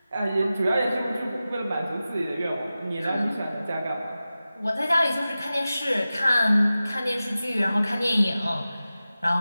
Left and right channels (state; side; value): inverted; both; correlation -0.95